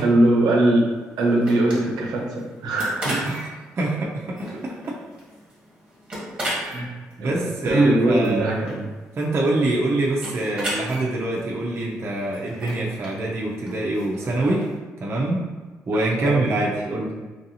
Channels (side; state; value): both; normal; correlation 0.80